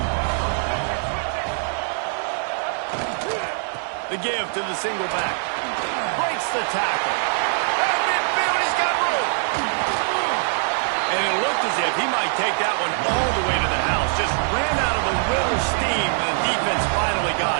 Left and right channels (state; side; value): silent; left; 56 dB below the other